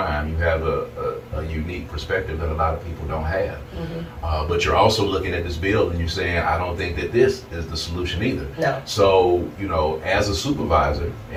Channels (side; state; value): both; identical; correlation 1.00